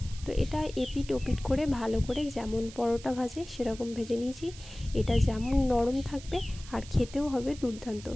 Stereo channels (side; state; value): right; noise; hiss, 17 dB below the sound